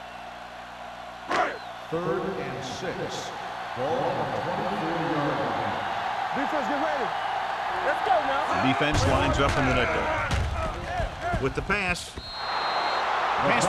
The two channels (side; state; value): both; identical; correlation 1.00